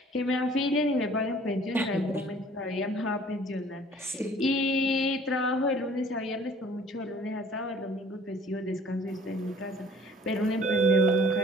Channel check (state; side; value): normal; both; correlation 0.53